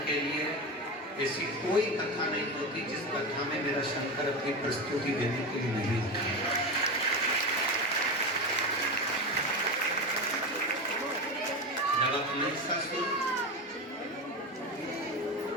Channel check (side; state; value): both; normal; correlation 0.20